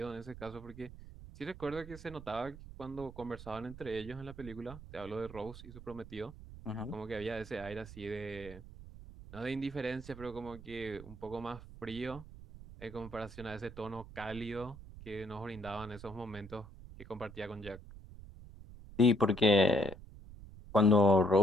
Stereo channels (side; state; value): right; noise; rumble, 15 dB below the sound